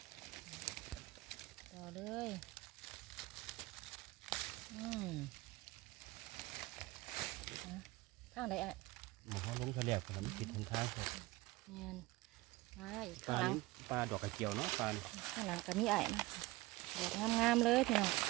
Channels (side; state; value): left; quieter; 20.3 dB